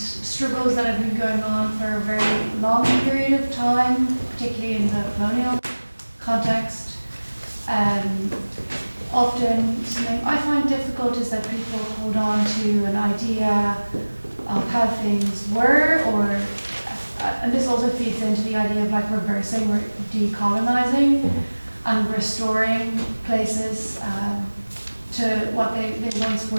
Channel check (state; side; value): inverted; both; correlation -1.00